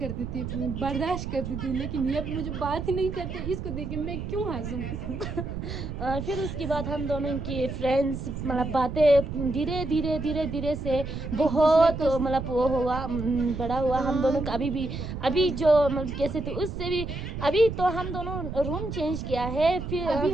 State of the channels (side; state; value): right; noise; rumble, 6 dB below the sound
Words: थी, बर्दाश्त करती थी, लेकिन ये मुझे बात ही नहीं करते। इसको देख के मैं क्यों हंसूं। फिर उसके बाद हम दोनों की फ्रेंड्स मतलब बातें धीरे धीरे धीरे धीरे से बहुत को मतलब वो हुआ, बड़ा हुआ हम दोनों का। अभी जो मतलब कैसे थे उससे भी अभी तो हम दोनों रूम चेंज किया है। फिर अभी